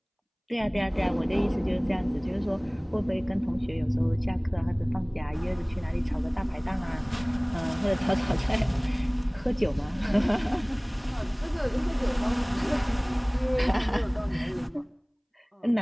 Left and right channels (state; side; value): identical; both; correlation 1.00